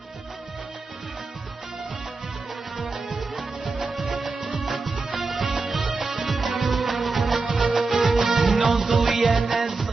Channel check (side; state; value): left; quieter; 3.9 dB